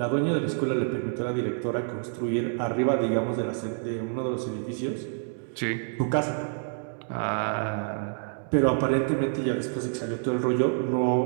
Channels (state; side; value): silent; left; 60 dB below the other